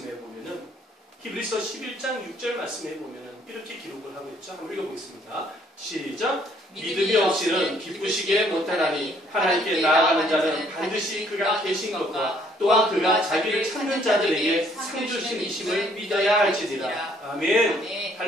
보면은 히브리서 11장 6절 말씀에 보면은 이렇게 기록을 하고 있죠. 한번 읽어보겠습니다. 시작. 믿음이 없이는 기쁘시게 못하나니 하나님께 나아가는 자는 반드시 그가 계신 것과 또한 그가 자기를 찾는 자들에게 상 주심이심을 믿어야 할지니라. 아멘. 아멘.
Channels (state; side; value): normal; both; correlation 0.64